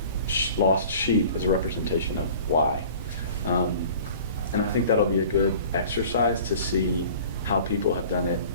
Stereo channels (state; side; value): inverted; both; correlation -0.45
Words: lost sheep is a representation of Y. And I think that'll be a good exercise to see how people have done it